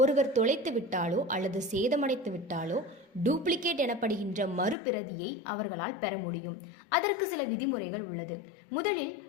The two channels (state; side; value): drops out; right; at 4.8 s